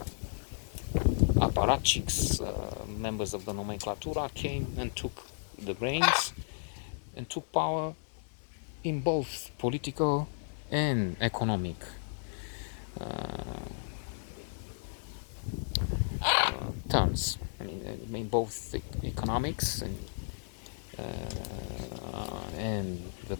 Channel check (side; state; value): right; silent; digital silence